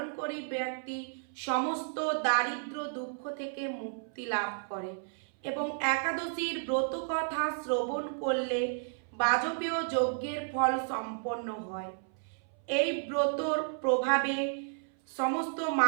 করে ব্যক্তি সমস্ত দারিদ্র দুঃখ থেকে মুক্তি লাভ করে এবং একাদশীর ব্রত কথা শ্রবণ করলে বাজপেয় যজ্ঞের ফল সম্পন্ন হয়। এই ব্রতর প্রভাবে সমস্ত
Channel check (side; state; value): left; silent; 56 dB below the other